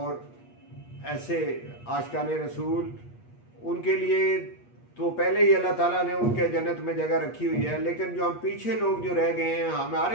ऐसे आशिकाने रसूल, उनके लिए तो पहले ही अल्लाह ताला ने उनके जन्नत में जगह रखी हुई है, लेकिन जो हम पीछे लोग जो रह गए हैं,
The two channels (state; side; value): late; right; 8.4 ms